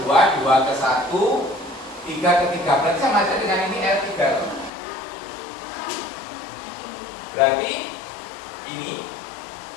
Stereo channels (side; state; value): right; drops out; at 4.7 s